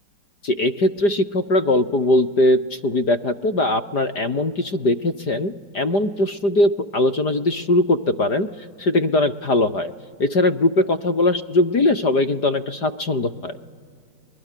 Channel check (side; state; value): right; late; 5.0 ms